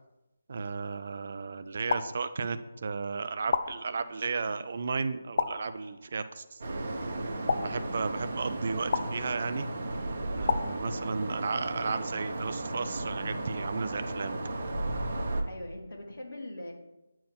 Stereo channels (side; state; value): both; inverted; correlation -0.87